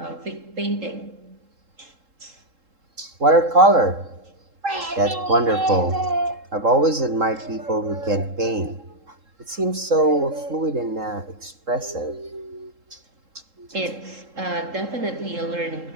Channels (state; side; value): late; left; 3.7 ms